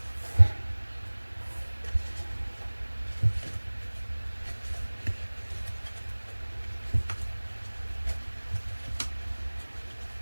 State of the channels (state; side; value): inverted; both; correlation -1.00